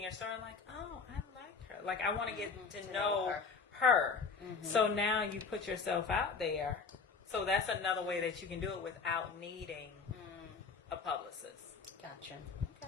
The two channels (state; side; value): quieter; right; 5.0 dB